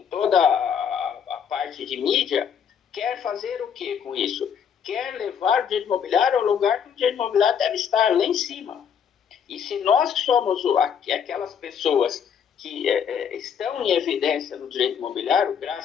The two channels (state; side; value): quieter; right; 7.7 dB